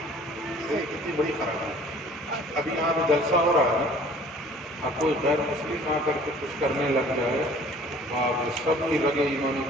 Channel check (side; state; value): both; normal; correlation 0.51